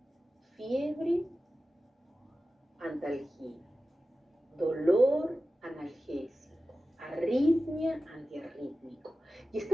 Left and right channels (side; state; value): both; normal; correlation 0.94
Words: fiebre, antalgia, dolor, analgésico, arritmia, antiarrítmico. Y